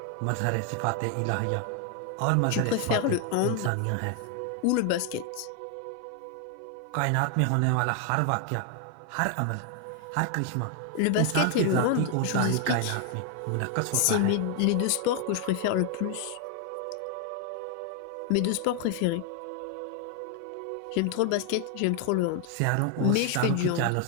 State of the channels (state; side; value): different; both; correlation 0.00